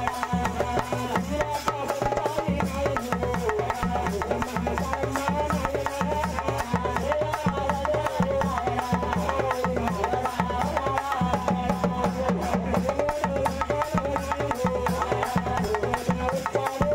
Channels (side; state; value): both; identical; correlation 1.00